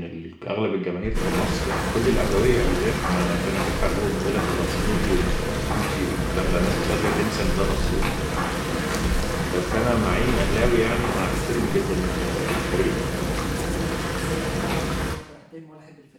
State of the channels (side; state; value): both; identical; correlation 1.00